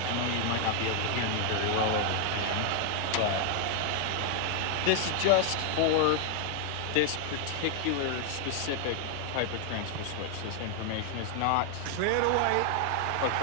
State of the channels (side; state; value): both; different; correlation 0.00